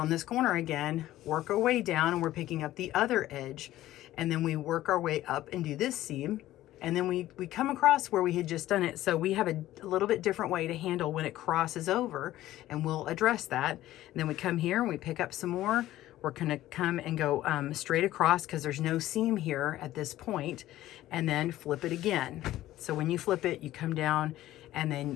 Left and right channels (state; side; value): quieter; right; 14.7 dB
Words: on this corner again, work our way down, and we're picking up the other edge, and then we work our way up and do this seam, and then we come across where we had just done it. So we have a little bit different way to handle when it crosses over, and we'll address that. And then we come here and we pick up some more. We're going to come and go straight across because there's no seam here at this point, and then flip it again. So when you flip it, you come down and